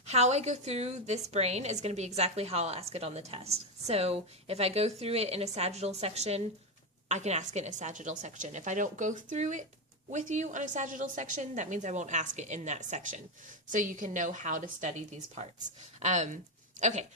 How I go through this brain is going to be exactly how I'll ask it on the test. So if I go through it in a sagittal section, I can ask it in a sagittal section. If I don't go through it with you on a sagittal section, that means I won't ask it in that section. So you can know how to study these parts. Okay,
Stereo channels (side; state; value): both; normal; correlation 0.10